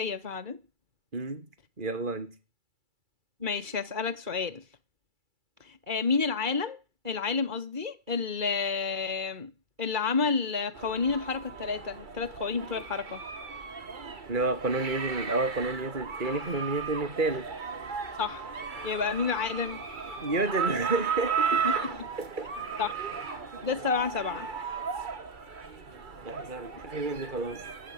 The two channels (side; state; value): left; late; 2.3 ms